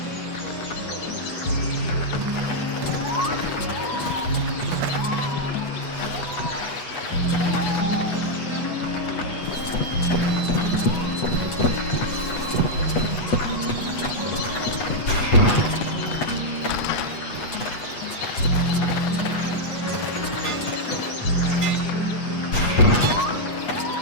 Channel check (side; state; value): right; late; 8.2 ms